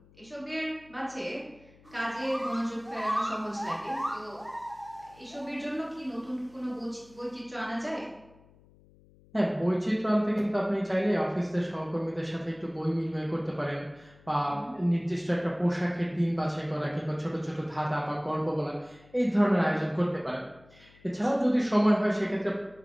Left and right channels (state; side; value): noise; left; hum, 27 dB below the sound